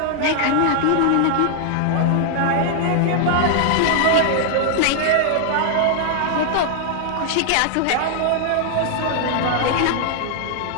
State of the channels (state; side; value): different; both; correlation 0.00